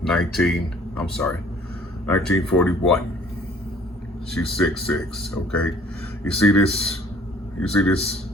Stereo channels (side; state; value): both; normal; correlation 0.56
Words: 1941. She's 6'6", okay? You see this?